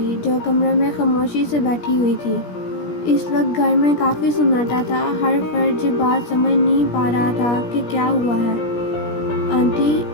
جو کمرے میں خاموشی سے بیٹھی ہوئی تھی۔ اس وقت گھر میں کافی سناٹا تھا۔ ہر فرد یہ بات سمجھ نہیں پا رہا تھا کہ کیا ہوا ہے۔ آنٹی،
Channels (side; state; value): right; late; 17 ms